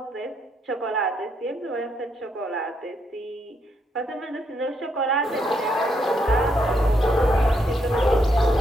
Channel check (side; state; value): both; normal; correlation 0.77